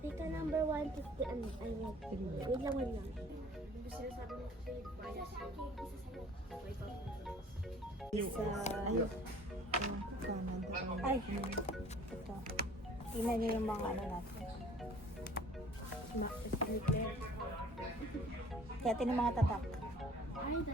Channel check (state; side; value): normal; both; correlation 0.51